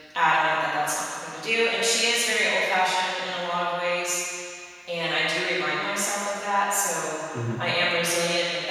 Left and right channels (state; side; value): identical; both; correlation 1.00